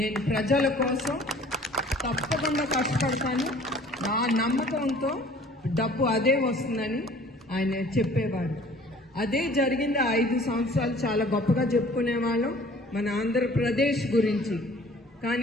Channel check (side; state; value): both; normal; correlation 0.51